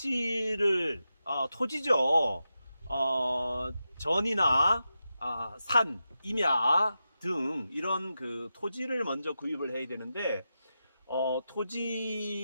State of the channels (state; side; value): inverted; both; correlation -0.90